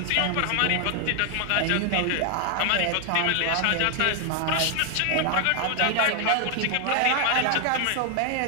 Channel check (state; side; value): different; both; correlation 0.00